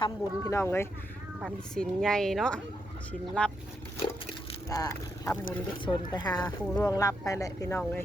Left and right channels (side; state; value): both; normal; correlation 0.81